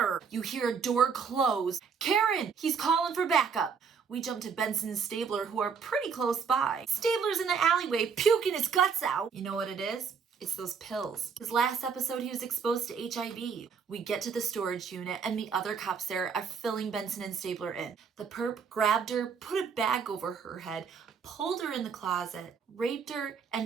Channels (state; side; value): quieter; left; 6.1 dB